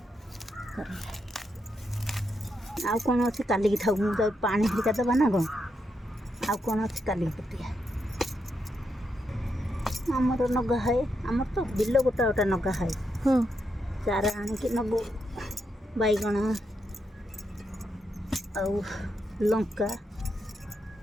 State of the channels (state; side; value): normal; both; correlation 0.82